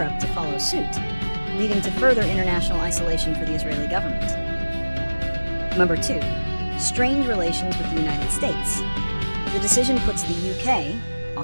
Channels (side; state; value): both; inverted; correlation -1.00